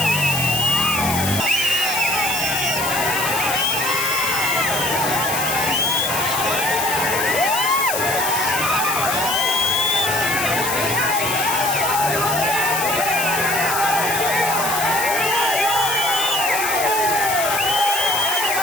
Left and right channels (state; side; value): noise; left; hiss, 3 dB below the sound